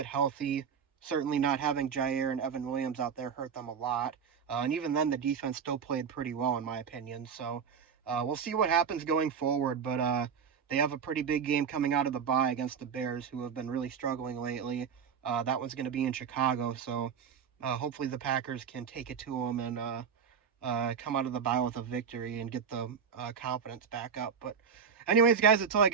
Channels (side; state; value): left; quieter; 6.9 dB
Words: healthy. Certainly not having Jair and Evan Williams out there hurt them a lot. And even then, the defense still played pretty well, in my opinion. So we'll see what happens going forward. But they have a pretty big game coming out of the bye against the Bears, who have been really struggling lately. That one's going to be in Chicago. So hopefully the Packers can take it to them and come out of the bye with a victory and get the confidence back up. But anyways, guys, that's all I